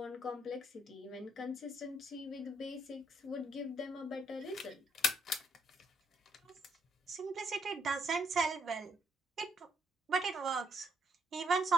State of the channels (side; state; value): both; normal; correlation 0.72